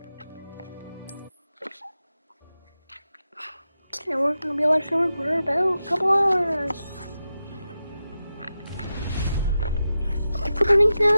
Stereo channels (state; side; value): inverted; both; correlation -0.91